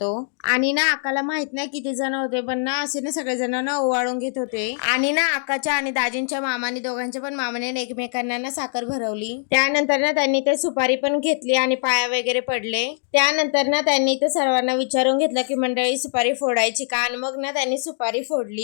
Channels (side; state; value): right; silent; 64 dB below the other